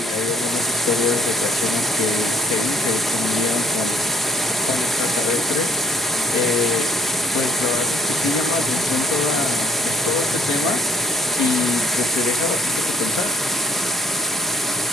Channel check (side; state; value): both; normal; correlation 0.65